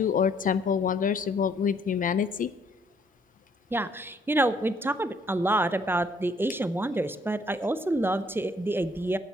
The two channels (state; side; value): normal; both; correlation 0.65